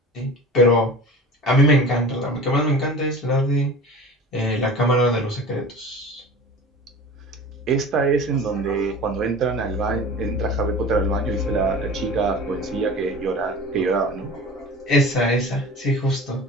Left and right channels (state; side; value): normal; both; correlation 0.37